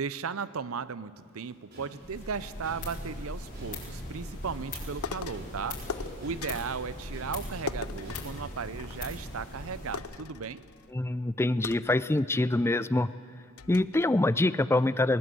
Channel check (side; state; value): both; normal; correlation 0.60